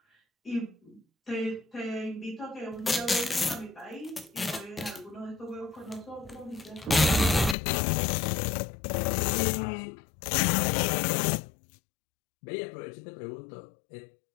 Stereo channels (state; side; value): drops out; right; at 7.6 s